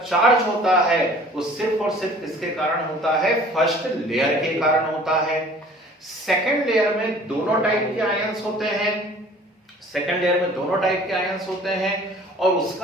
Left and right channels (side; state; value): both; normal; correlation 0.50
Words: होता है वो सिर्फ और सिर्फ किसके कारण होता है? फर्स्ट लेयर के कारण होता है। सेकंड लेयर में दोनों टाइप के आयंस होते हैं, सेकंड लेयर में दोनों टाइप के आयंस होते हैं, और